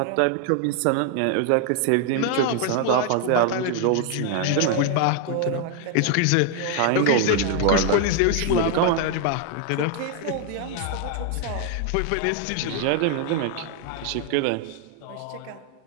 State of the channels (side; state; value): both; different; correlation 0.00